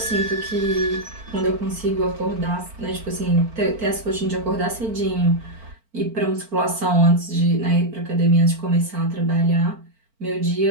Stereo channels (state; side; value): late; left; 4.4 ms